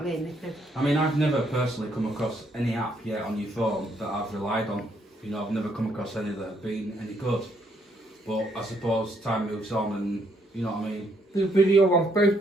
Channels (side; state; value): both; normal; correlation 0.71